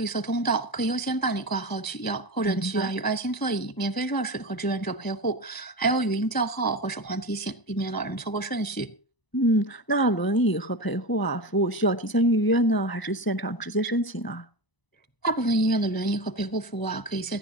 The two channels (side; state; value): right; late; 1.0 ms